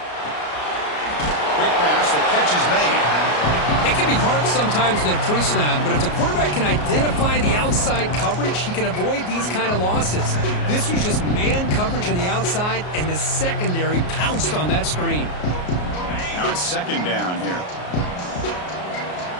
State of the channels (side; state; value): right; late; 33 ms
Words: Quick pass, the catch is made. It can be hard sometimes in a pre-snap, but if the quarterback can identify the outside coverage, he can avoid these kind of losses. This was just man coverage on the outside, and the secondary pounced on that screen. Now it's second down here.